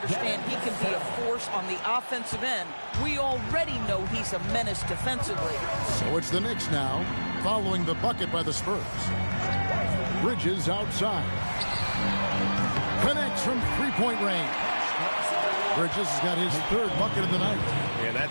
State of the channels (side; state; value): both; inverted; correlation -1.00